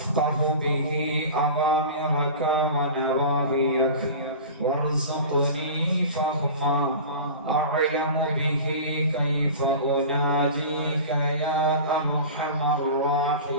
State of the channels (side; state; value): both; inverted; correlation -0.35